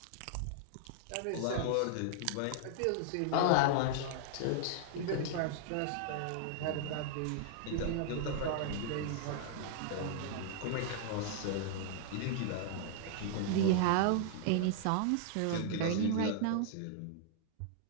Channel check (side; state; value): both; different; correlation -0.01